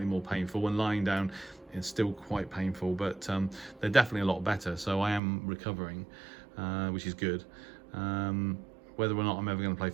more painful. When lying down, it's still quite painful, but they're definitely a lot better. So I am recovering, which is good. Whether or not I'm ever going to play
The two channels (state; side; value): drops out; left; at 5.2 s